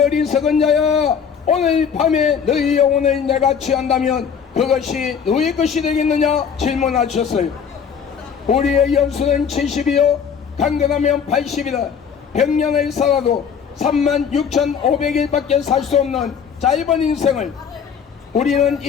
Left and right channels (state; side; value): quieter; right; 7.1 dB